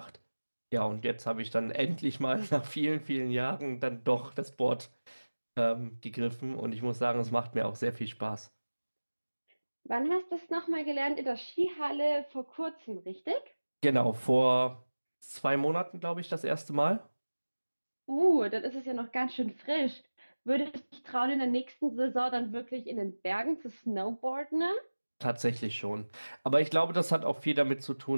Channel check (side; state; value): both; inverted; correlation -1.00